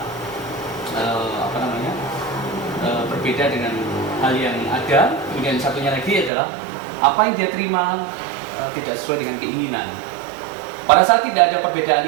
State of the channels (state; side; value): drops out; left; at 6.3 s